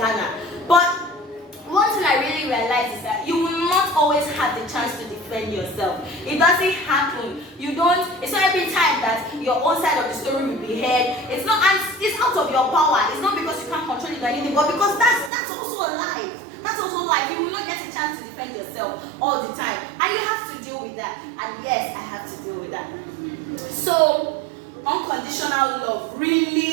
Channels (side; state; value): left; drops out; at 15.3 s